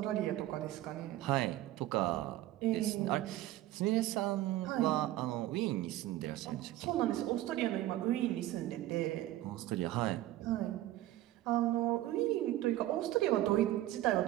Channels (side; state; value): left; quieter; 15.0 dB